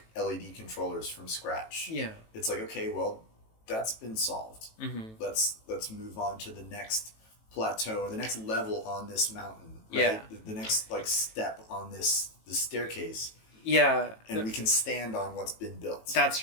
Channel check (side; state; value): right; late; 18 ms